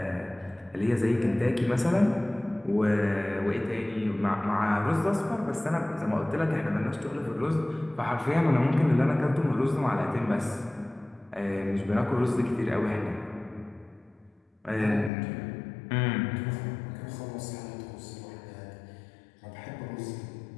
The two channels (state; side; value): drops out; right; at 15.1 s